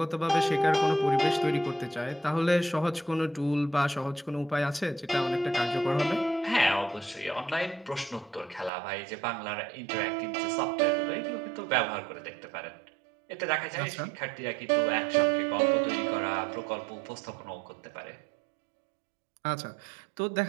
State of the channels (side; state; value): left; drops out; at 8.7 s